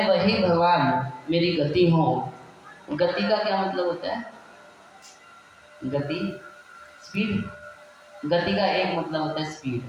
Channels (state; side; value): identical; both; correlation 1.00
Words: वही भगवान मेरी गति हो। गति का क्या मतलब होता है? गति स्पीड। गति का एक मतलब होता है स्पीड,